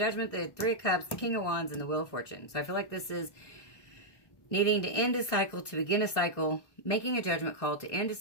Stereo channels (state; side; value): late; right; 1.6 ms